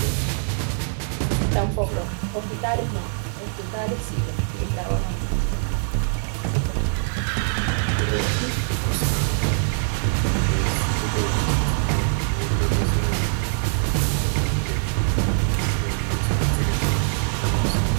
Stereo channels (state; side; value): silent; left; digital silence